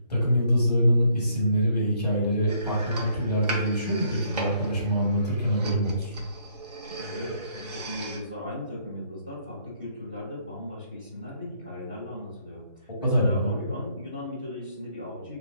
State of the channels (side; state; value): both; inverted; correlation -0.68